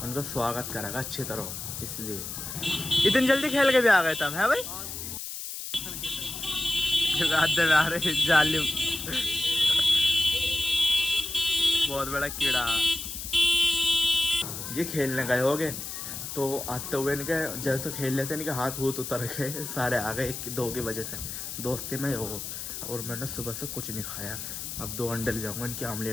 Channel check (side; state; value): left; noise; hiss, 7 dB below the sound